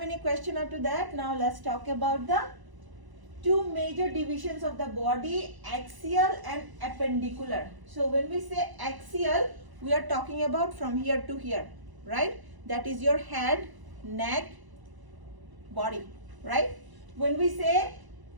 any question up to that, now let's talk about the two major divisions of the body, axial and appendicular. So when we say axial, we are talking about from here to here, right? That is your head, neck, body, right? When we say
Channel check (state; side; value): late; left; 1.0 ms